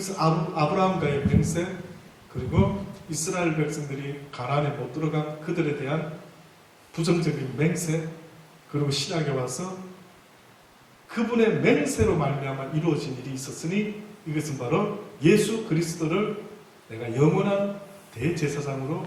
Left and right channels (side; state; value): both; identical; correlation 1.00